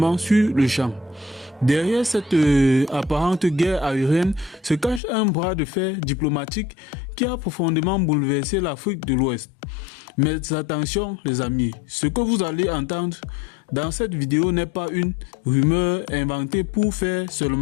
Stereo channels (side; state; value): right; drops out; at 5.0 s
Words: sur le champ. Derrière cette apparente guerre aérienne se cache un bras de fer diplomatique qui a profondément bouleversé l'Afrique de l'Ouest. Mais attention les amis, ce que vous allez entendre dans cette vidéo n'est pas une rumeur inventée pour faire